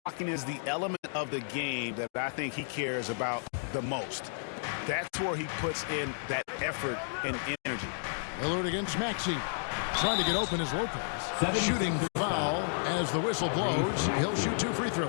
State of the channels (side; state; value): right; silent; digital silence